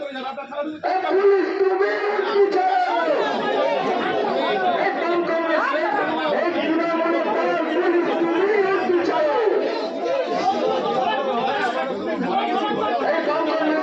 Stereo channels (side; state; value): both; identical; correlation 1.00